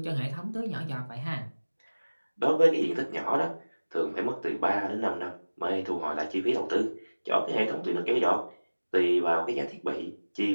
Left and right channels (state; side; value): inverted; both; correlation -1.00